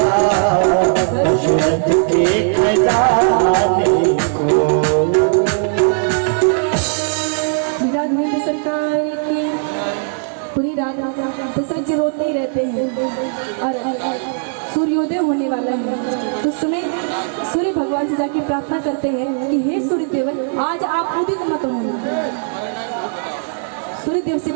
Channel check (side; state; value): left; silent; digital silence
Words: दशरथ के खजाने को। सरकार की पूरी रात दशरथ जी रोते ही रहते हैं और सूर्योदय होने वाला है तो उस समय सूर्य भगवान से जाके प्रार्थना करते हैं कि हे सूर्यदेव आज आप उदित मत होना। सूर्यदेव से